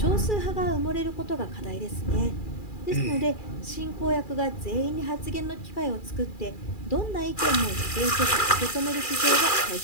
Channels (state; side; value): late; right; 2.4 ms